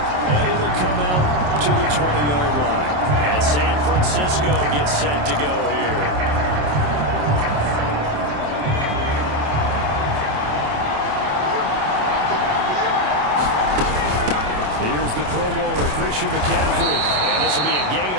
and it'll come out to the 20-yard line. And San Francisco gets set to go here. Here's the Pro Bowler, Christian McCaffrey. And this will be a gain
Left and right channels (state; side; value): late; left; 27 ms